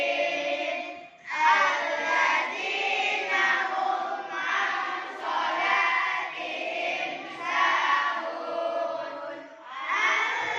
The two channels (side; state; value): both; identical; correlation 1.00